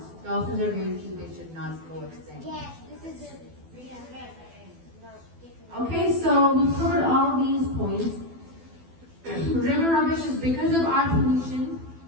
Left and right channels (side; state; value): left; late; 12 ms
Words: Dolphins are very cute. They should not go extinct. Yes, this is it. Okay, so we've covered all these points. River rubbish is because of our pollution.